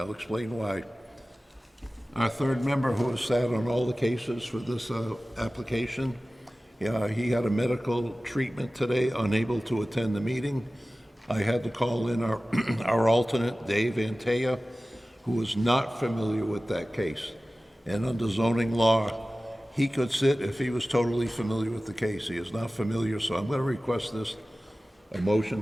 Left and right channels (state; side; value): normal; both; correlation 0.97